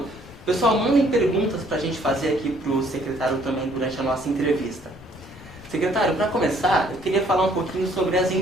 Pessoal, mandem perguntas para a gente fazer aqui para o secretário também durante a nossa entrevista. Secretário, para começar, eu queria falar um pouquinho sobre as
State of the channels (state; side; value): noise; left; rumble, 22 dB below the sound